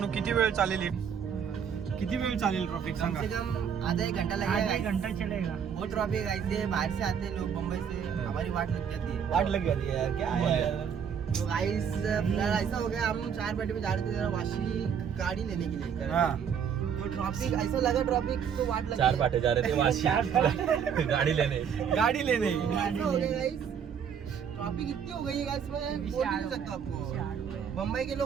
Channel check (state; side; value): quieter; left; 7.6 dB